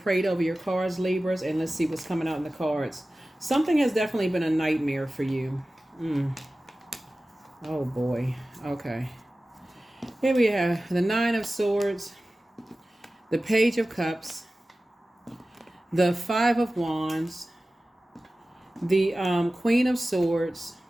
over your cards, Libras, and let's see what's coming out in the cards. Something has definitely been a nightmare for you. Oh, boy. Okay. Here we have the Nine of Swords, the Page of Cups, the Five of Wands, the Queen of Swords,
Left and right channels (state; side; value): normal; both; correlation 0.96